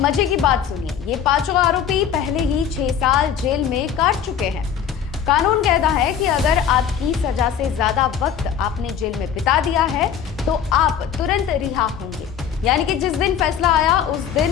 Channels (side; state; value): right; quieter; 8.3 dB